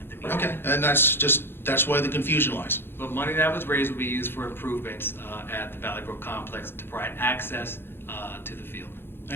the meeting. Okay, and that's why the confusion lies. But money that was raised will be used for improvements at the Valley Brook complex to provide access to the field.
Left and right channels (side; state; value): right; late; 0.11 ms